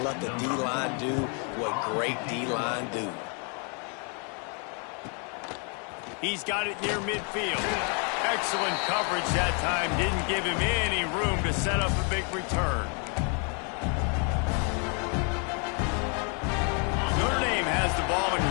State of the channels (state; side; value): quieter; right; 37.9 dB